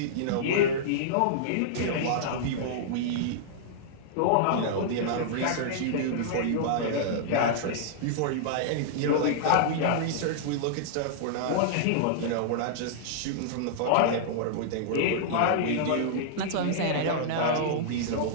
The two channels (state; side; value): different; both; correlation -0.02